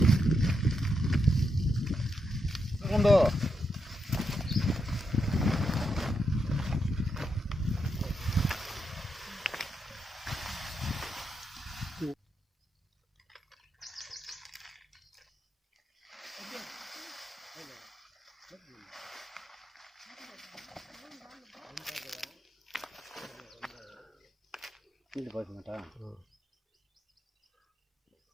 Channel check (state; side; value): normal; both; correlation 0.83